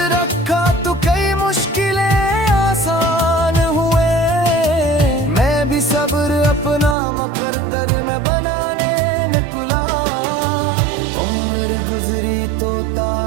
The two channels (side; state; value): left; drops out; at 7.0 s